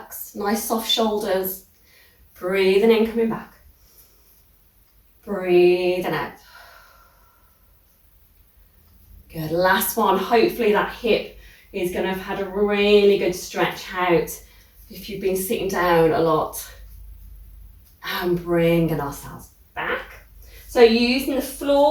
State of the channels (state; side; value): identical; both; correlation 1.00